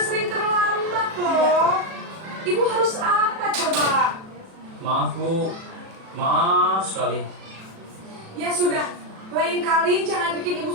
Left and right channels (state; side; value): late; left; 37 ms